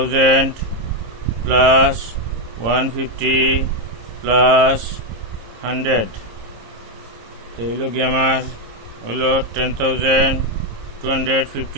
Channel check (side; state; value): left; late; 26 ms